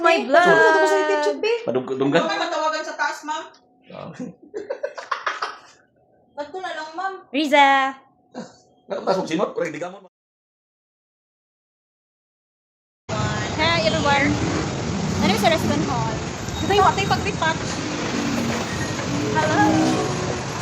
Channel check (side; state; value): both; identical; correlation 1.00